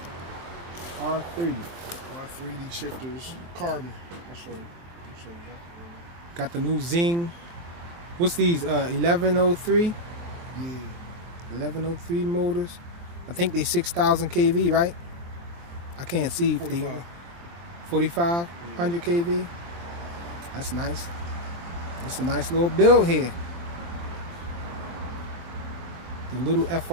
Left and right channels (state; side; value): late; left; 23 ms